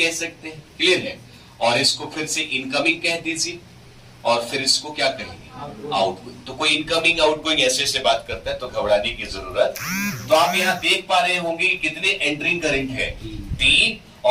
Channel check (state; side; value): identical; both; correlation 1.00